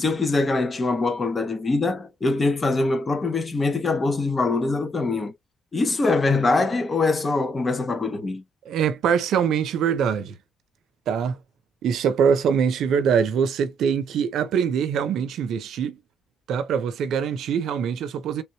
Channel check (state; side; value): normal; both; correlation 0.72